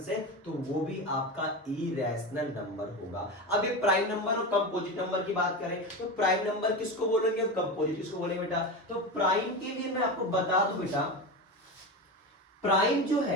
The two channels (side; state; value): both; normal; correlation 0.21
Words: से, तो वो भी आपका इरेशनल नंबर होगा। अब ये प्राइम नंबर और कंपोजिट नंबर की बात करें तो प्राइम नंबर किसको बोलेंगे और कंपोजिट किसको बोलेंगे बेटा? तो प्राइम के लिए मैं आपको बता दूं बेटा, प्राइम जो